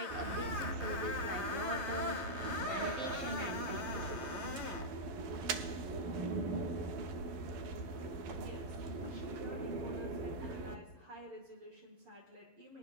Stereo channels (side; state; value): left; late; 12 ms